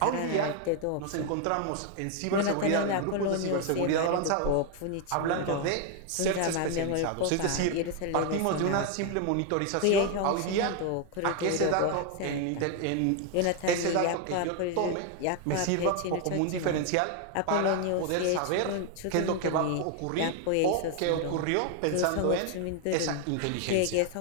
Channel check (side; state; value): both; different; correlation 0.01